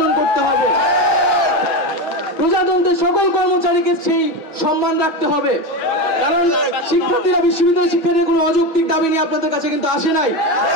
করতে হবে। প্রজাতন্ত্রের সকল কর্মচারীকে সেই সম্মান রাখতে হবে, কারণ শিক্ষার্থীরা বিশ্ববিদ্যালয়ের শিক্ষার্থীদের কোনো অযৌক্তিক দাবি নিয়ে আপনাদের কাছে কিন্তু আসে নাই,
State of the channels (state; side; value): late; right; 6.2 ms